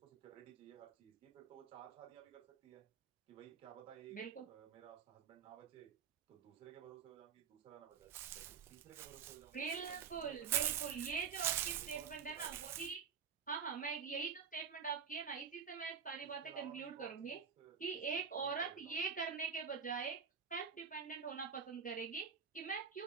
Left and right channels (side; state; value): left; quieter; 6.8 dB